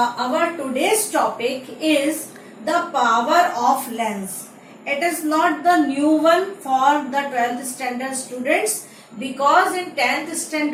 today's topic is the power of lens. It is not the new one for the 12th standard students because in 10th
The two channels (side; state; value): both; identical; correlation 1.00